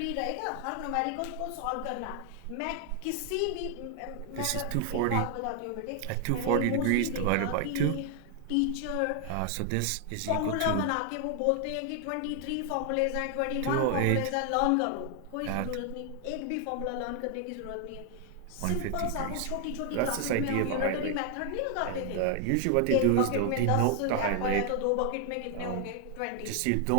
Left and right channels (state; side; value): different; both; correlation 0.00